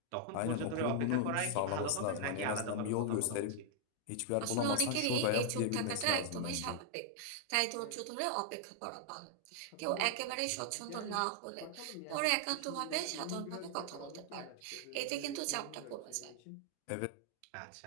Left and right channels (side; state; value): both; different; correlation 0.00